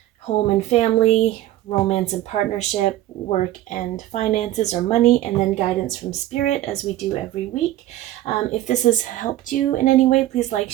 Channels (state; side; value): quieter; left; 14.4 dB